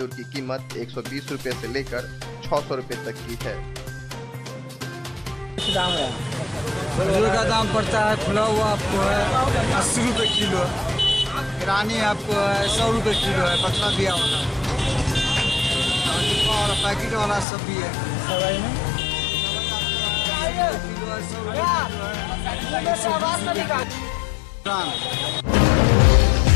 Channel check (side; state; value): right; drops out; at 17.4 s